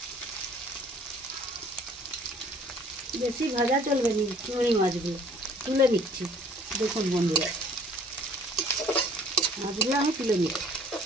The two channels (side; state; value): both; normal; correlation 0.55